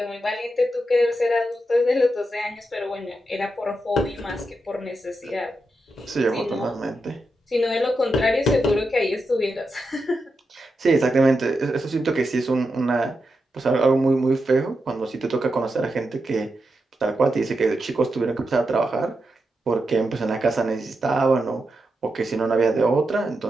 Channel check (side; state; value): both; normal; correlation 0.87